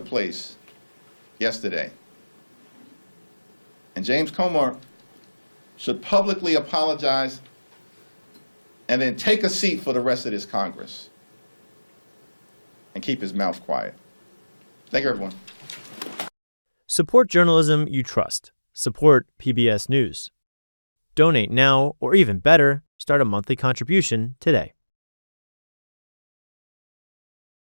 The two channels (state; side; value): inverted; both; correlation -1.00